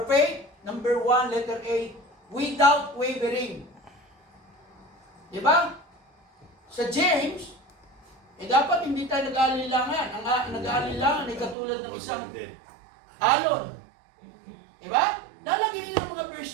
faith? Number 1, letter A, without wavering. Diba? Sa James, dapat hindi tayo nag-aalilangan. Ang nag-aalilangan ay katulad ng isang alon. Diba? Nalagyan niyo ng mga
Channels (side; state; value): left; drops out; at 11.6 s